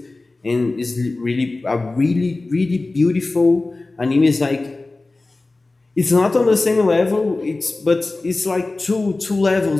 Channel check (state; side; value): quieter; right; 3.2 dB